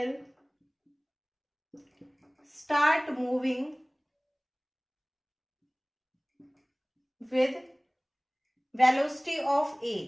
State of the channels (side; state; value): both; identical; correlation 1.00